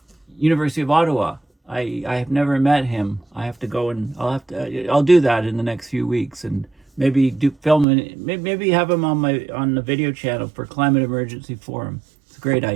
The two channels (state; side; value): drops out; left; at 7.9 s